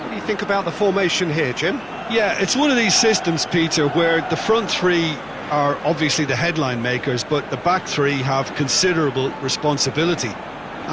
What do you think about the formation here, Jim? Yeah, it's one of these systems, Peter, where the front three are obviously the headline makers, but the back three have considerable responsibility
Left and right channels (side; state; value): left; noise; hum, 29 dB below the sound